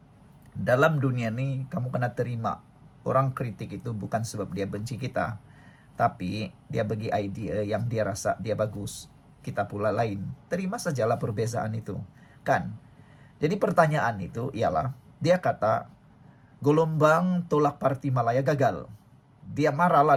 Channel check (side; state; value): both; identical; correlation 1.00